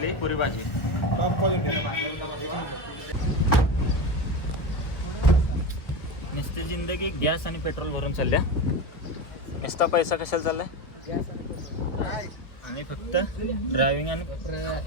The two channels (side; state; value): right; late; 1.2 ms